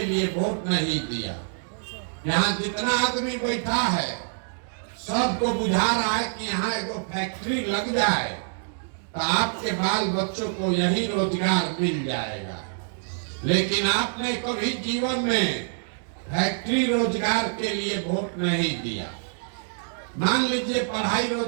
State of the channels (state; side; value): silent; left; digital silence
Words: लिए वोट नहीं दिया। यहाँ जितना आदमी बैठा है सबको बुझा रहा है कि यहाँ एगो फैक्ट्री लग जाए तो आपके बाल बच्चों को यही रोजगार मिल जाएगा। लेकिन आपने कभी जीवन में फैक्ट्री रोजगार के लिए वोट नहीं दिया, मान लीजिए पढ़ाई